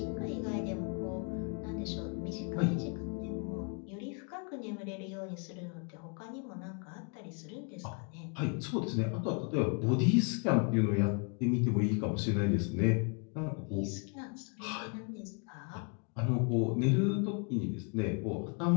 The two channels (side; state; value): right; quieter; 36.6 dB